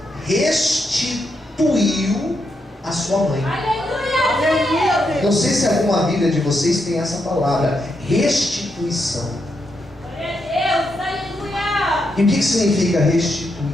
restituiu a sua mãe. Aleluia! Não sei se alguma Bíblia de vocês tem essa palavra, restituição. E o que significa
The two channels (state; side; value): normal; both; correlation 0.82